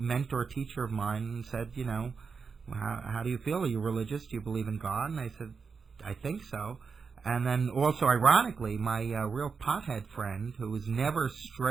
teacher of mine said, you know, how do you feel? Are you religious? Do you believe in God? And I said, I think so. And then also, ironically, my real pothead friend, who was never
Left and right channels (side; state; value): left; quieter; 5.4 dB